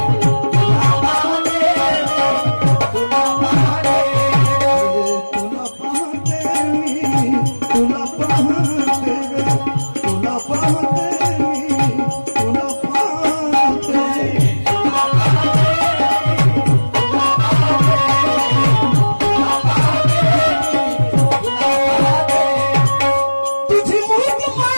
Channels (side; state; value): both; inverted; correlation -1.00